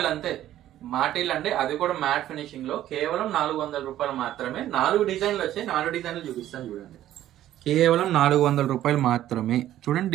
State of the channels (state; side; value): quieter; left; 12.8 dB